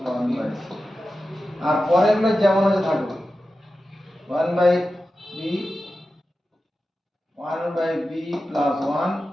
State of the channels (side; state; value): both; normal; correlation 0.93